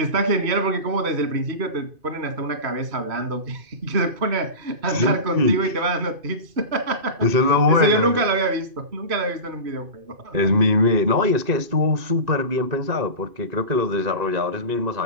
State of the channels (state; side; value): late; left; 2.5 ms